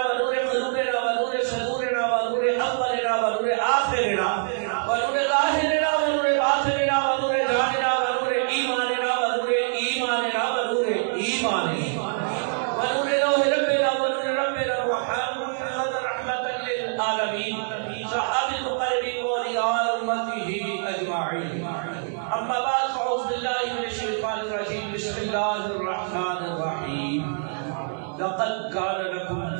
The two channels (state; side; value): silent; left; digital silence